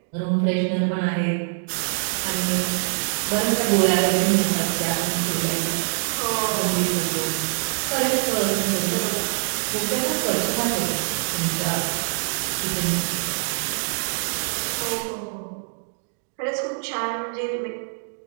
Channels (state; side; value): silent; left; digital silence